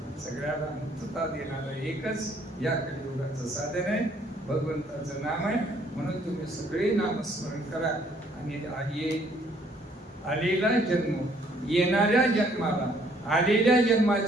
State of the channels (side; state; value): both; normal; correlation 0.63